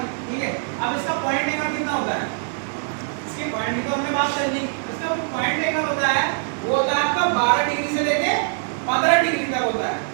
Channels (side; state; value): left; silent; 63 dB below the other